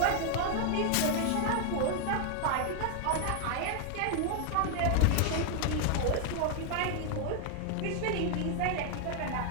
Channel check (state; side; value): different; both; correlation 0.00